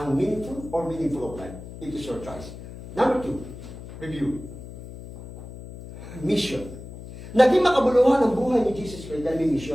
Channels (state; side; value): noise; left; hum, 13 dB below the sound